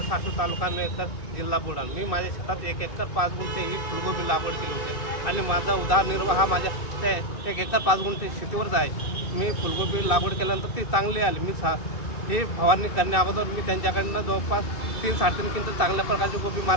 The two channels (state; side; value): late; right; 2.5 ms